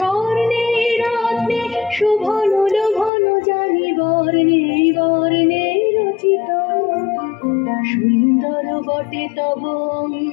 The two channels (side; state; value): right; drops out; at 3.1 s